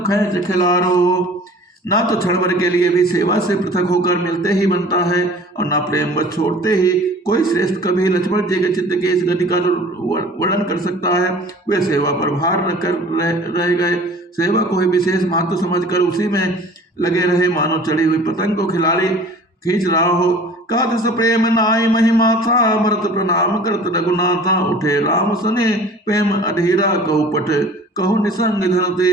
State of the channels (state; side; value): normal; both; correlation 0.46